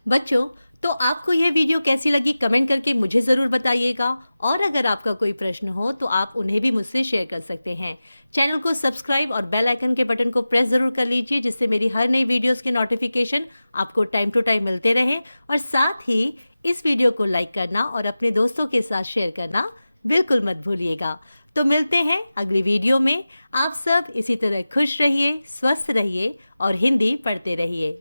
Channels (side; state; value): both; inverted; correlation -0.95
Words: बच्चों, तो आपको यह वीडियो कैसी लगी कमेंट करके मुझे ज़रूर बताइएगा। और अगर आपका कोई प्रश्न हो तो आप उन्हें भी मुझसे शेयर कर सकते हैं। चैनल को सब्सक्राइब और बेल आइकन के बटन को प्रेस ज़रूर कर लीजिए, जिससे मेरी हर नई वीडियोस के नोटिफिकेशन आपको टाइम टू टाइम मिलते रहें। और साथ ही इस वीडियो को लाइक करना और अपने दोस्तों के साथ शेयर करना बिल्कुल मत भूलिएगा। तो मिलते हैं अगली वीडियो में। आप सब इसी तरह खुश रहिए, स्वस्थ रहिए और हिंदी पढ़ते रहिए।